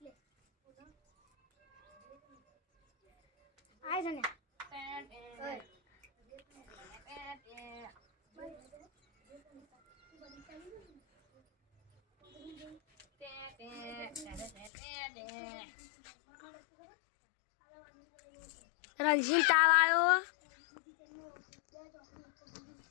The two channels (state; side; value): drops out; right; at 14.7 s